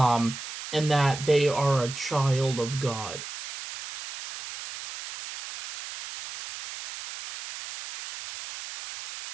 and that they are a child of God.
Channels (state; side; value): noise; right; hiss, 10 dB below the sound